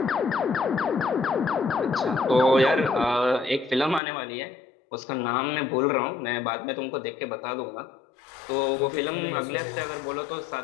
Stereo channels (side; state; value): right; drops out; at 4.0 s